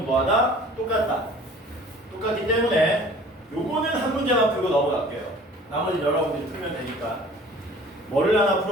뭐하다? 똑같기 때문에 요거는 한 문제만 풀고 넘어갈게요. 나머지 여러분들이 풀면 되니까. 뭐를 하나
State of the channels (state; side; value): normal; both; correlation 0.48